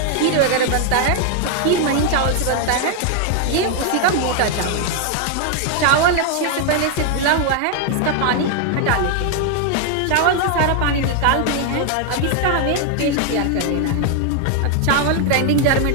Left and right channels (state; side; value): different; both; correlation 0.00